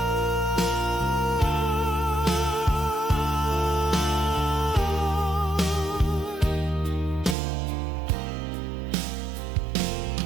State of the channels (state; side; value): drops out; left; at 7.4 s